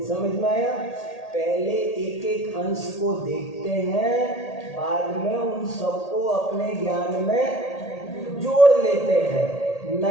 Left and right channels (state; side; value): late; right; 1.8 ms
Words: समझ में आया? पहले एक एक अंश को देखते हैं, बाद में उन सबको अपने ज्ञान में जोड़ लेते हैं।